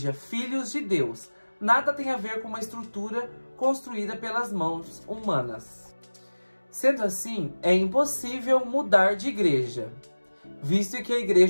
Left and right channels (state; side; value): inverted; both; correlation -1.00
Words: filhos de Deus. Nada tem a ver com uma estrutura construída pelas mãos humanas. Sendo assim, é impossível mudar de igreja, visto que a